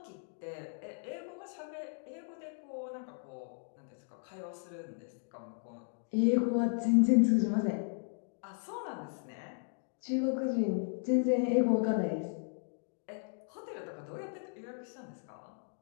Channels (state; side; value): silent; right; 54 dB below the other